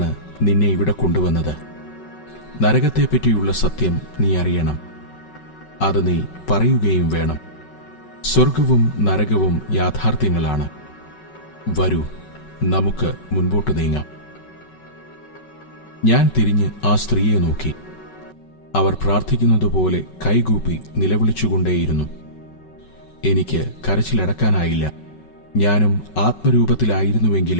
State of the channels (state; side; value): late; right; 5.3 ms